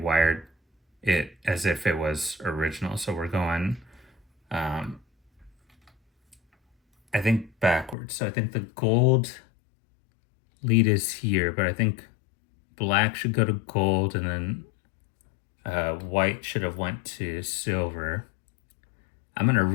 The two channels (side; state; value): right; drops out; at 8.0 s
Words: it as if it was original. So we're going, I think backwards. So I think the gold lead is here, but I think black should go to gold, and then white should have went to silver. I'm going to